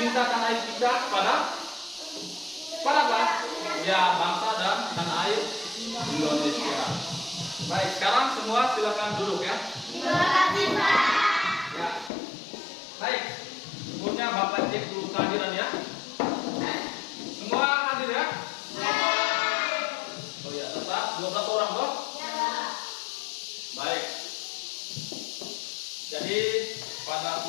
tanah air kita kepada apa? Ya, bangsa dan tanah air Indonesia. Baik, sekarang semua silakan duduk ya. Terima kasih, Pak. Ya. Baik, sebelumnya Bapak cek dulu kehadiran ya. Semua hadir ya? Oh ya, tetap 12 orang toh? Baik. Jadi pada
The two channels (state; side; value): drops out; right; at 12.1 s